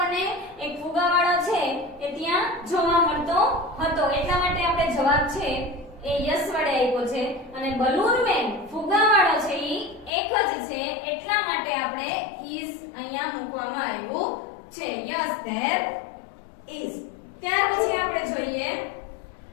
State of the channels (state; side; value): drops out; right; at 10.1 s